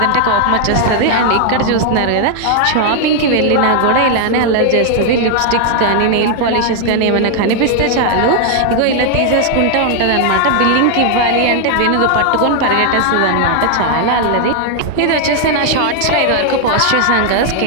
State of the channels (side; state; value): both; different; correlation 0.00